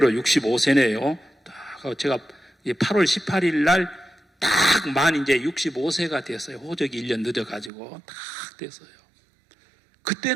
65세네요. 제가 8월 18일 날 딱 이제 65세가 됐어요. 호적이 1년 늦어가지고 딱 됐어요.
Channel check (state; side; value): drops out; left; at 7.7 s